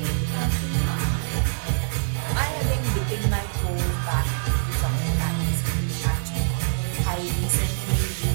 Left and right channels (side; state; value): left; silent; digital silence